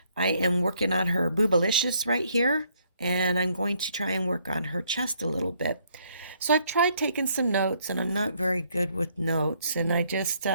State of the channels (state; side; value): inverted; both; correlation -0.69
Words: I am working on her Boobalicious right here, and I'm going to try and work on her chest a little bit. So I've tried taking some notes, and I'm not very good with notes, and I just